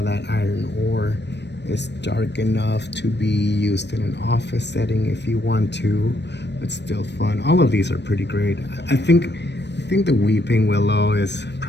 that iron ore is dark enough to be used in an office setting if you want to, but still fun. All of these are pretty great. I think the Weeping Willow is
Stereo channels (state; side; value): late; right; 0.50 ms